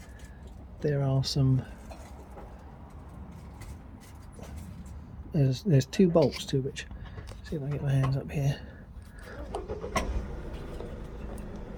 there are some, there's two bolts to which, see if I can get my hands up here.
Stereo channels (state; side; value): identical; both; correlation 1.00